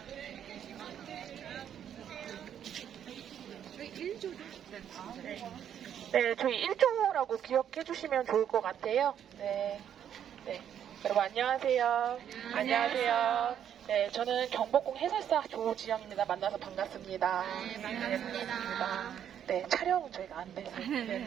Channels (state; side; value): quieter; left; 9.4 dB